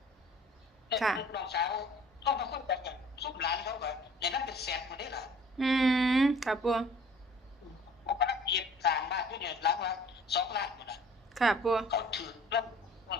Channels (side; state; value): both; normal; correlation 0.50